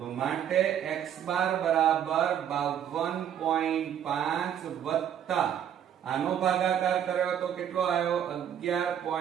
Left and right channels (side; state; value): left; quieter; 9.5 dB